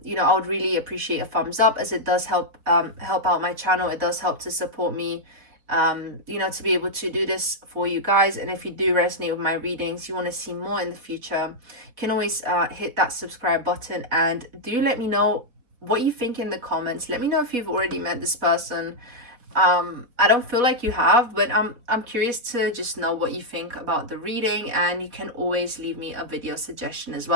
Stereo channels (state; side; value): late; left; 4.1 ms